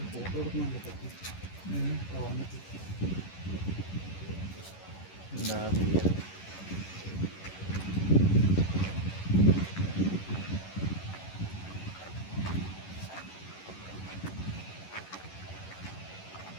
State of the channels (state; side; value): late; right; 11 ms